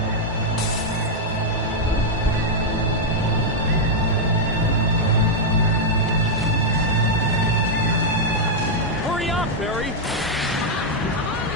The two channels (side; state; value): both; normal; correlation -0.01